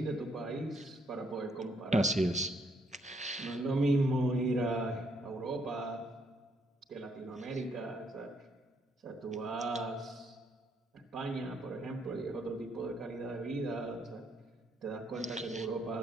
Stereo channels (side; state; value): both; normal; correlation 0.72